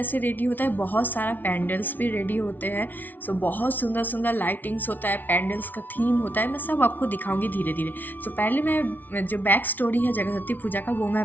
रेडी होता है, बहुत सारा पैंडल्स भी रेडी होते हैं। बहुत सुंदर सुंदर लाइटिंग्स होता है, पैंडल्स का थीम होता है। मैं सब आपको दिखाऊंगी धीरे धीरे। पहले मैं जो बैक स्टोरी है जगद्धत्री पूजा का वो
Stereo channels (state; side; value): late; right; 0.084 ms